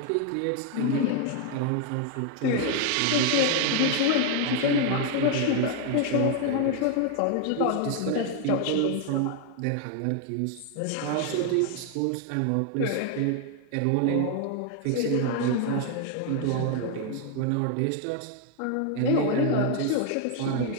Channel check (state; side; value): different; both; correlation 0.00